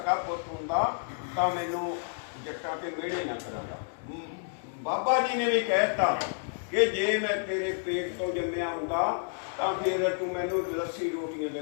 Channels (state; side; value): silent; right; digital silence